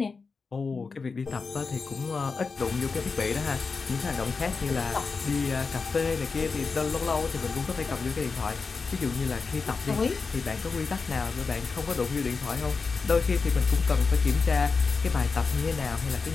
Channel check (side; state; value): right; quieter; 4.7 dB